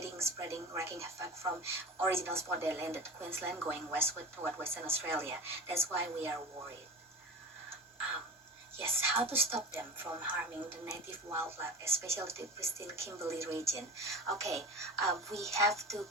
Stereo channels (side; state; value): both; normal; correlation 0.32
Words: spreading, wreaking havoc from original spot they landed, Queensland, going westward toward Western Australia. That's why we are worried. Yes, how to stop them from harming the native wildlife, especially the pristine Kimberley region. Okay, we have to